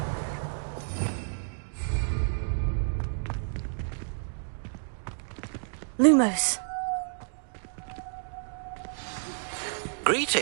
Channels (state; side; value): silent; left; digital silence